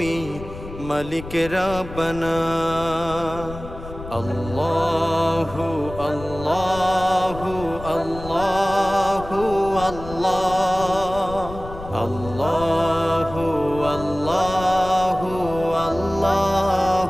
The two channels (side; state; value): left; noise; rumble, 13 dB below the sound